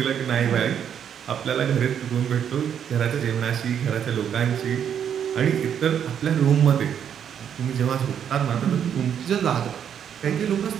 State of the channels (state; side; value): quieter; left; 8.6 dB